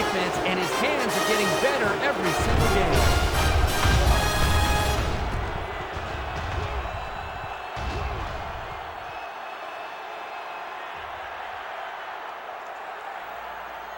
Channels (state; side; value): identical; both; correlation 1.00